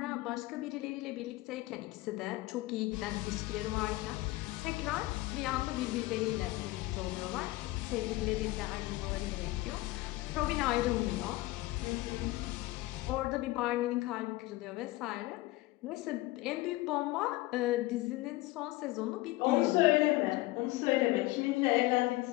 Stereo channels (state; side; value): quieter; right; 19.5 dB